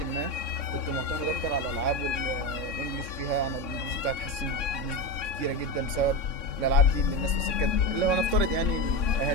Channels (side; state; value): right; late; 3.6 ms